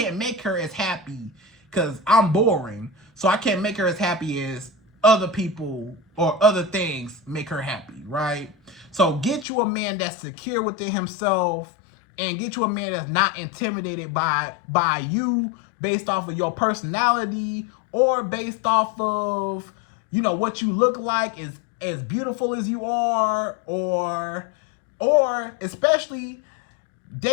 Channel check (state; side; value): drops out; right; at 9.5 s